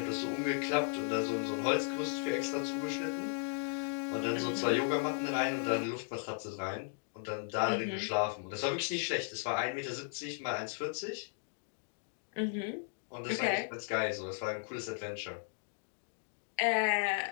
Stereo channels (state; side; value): silent; right; digital silence